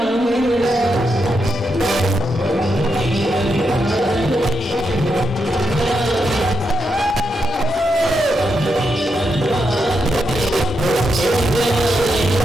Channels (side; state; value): both; normal; correlation 0.83